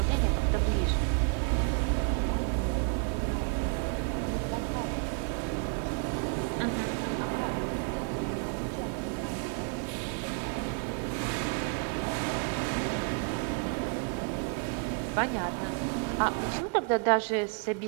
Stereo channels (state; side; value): quieter; left; 35.5 dB